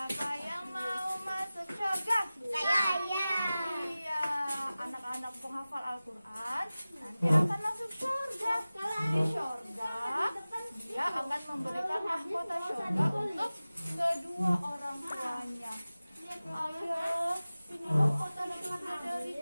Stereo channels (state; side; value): inverted; both; correlation -0.97